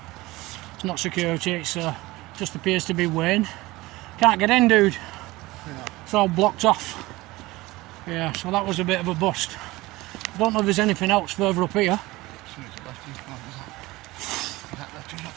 It's not security, it's just appears to be Wayne. Can't get in, dude. Yeah. It's all blocked off. Yeah, so that was a bit of a bust. I don't know if there's anything else further up here.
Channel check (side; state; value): left; quieter; 20.1 dB